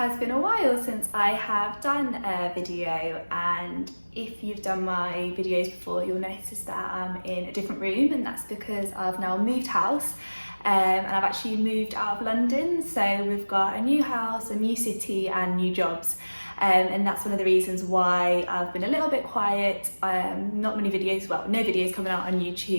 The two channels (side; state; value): both; inverted; correlation -1.00